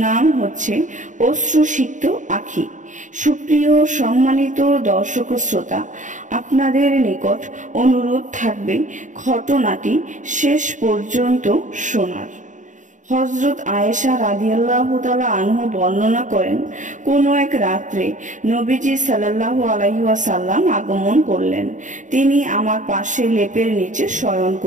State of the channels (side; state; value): left; late; 0.36 ms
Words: হচ্ছে অশ্রুসিক্ত আঁখি। সুপ্রিয় সম্মানিত দর্শক ও শ্রোতা, আপনাদের নিকট অনুরোধ থাকবে ঘটনাটি শেষ পর্যন্ত শোনার। হযরত আয়েশা রাদিয়াল্লাহু তাআলা আনহু বর্ণনা করেন, কোন এক রাত্রে নবীজি সাল্লাল্লাহু আলাইহি ওয়াসাল্লাম আগমন করলেন। তিনি আমার পাশে লেপের নিচে শয়ন